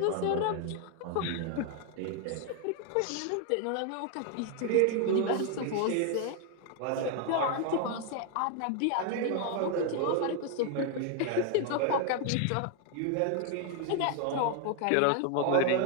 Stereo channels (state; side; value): different; both; correlation 0.00